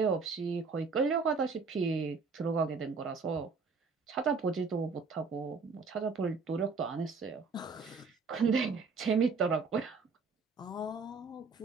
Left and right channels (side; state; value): left; quieter; 4.7 dB